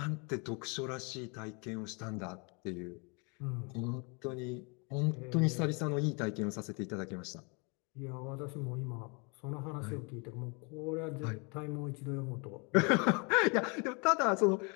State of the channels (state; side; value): quieter; right; 32.5 dB